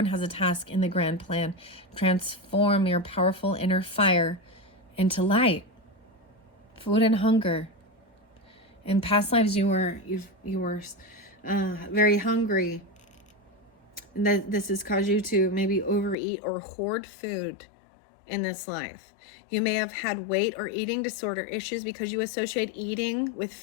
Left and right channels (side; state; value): right; drops out; at 16.2 s